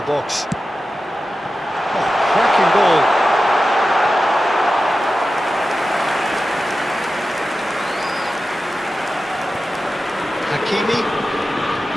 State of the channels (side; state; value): both; normal; correlation 0.93